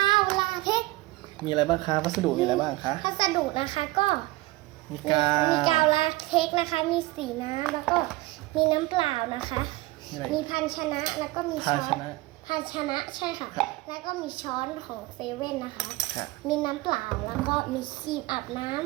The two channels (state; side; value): quieter; left; 20.4 dB